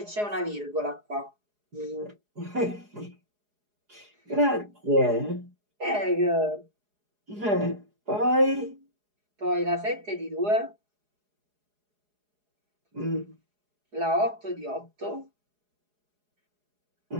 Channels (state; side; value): late; left; 4.8 ms